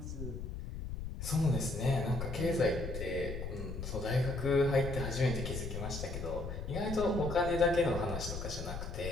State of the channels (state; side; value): noise; left; rumble, 6 dB below the sound